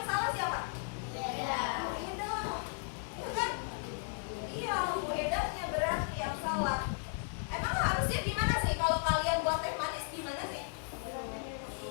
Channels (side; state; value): right; silent; 54 dB below the other